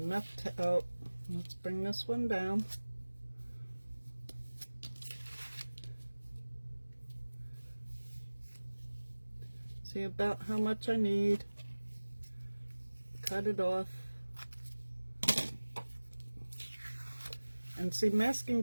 enough to, oh, let's bring this one down. See about how much I need. Cut it off. And see, masking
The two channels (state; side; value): inverted; both; correlation -1.00